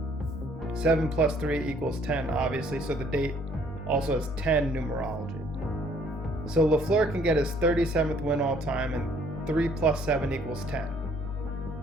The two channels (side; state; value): both; normal; correlation 0.62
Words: 7 plus 3 equals 10, obviously, so the date also has 10 numerology. So Lafleur can get his 37th win all time, and 3 plus 7 equals 10.